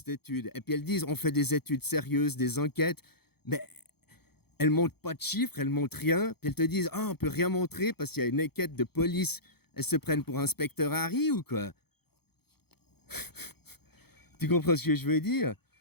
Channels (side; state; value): right; late; 0.96 ms